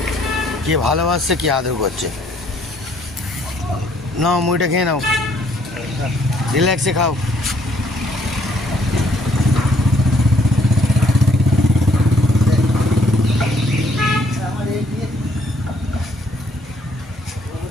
কে ভালোবাসছে কে আদর করছে। নাও মুড়িটা খেয়ে নাও, রিল্যাক্সে খাও।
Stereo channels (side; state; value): both; normal; correlation 0.66